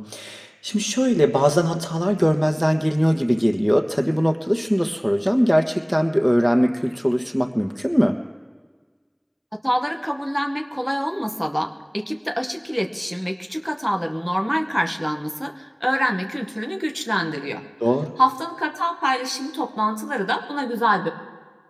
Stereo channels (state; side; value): identical; both; correlation 1.00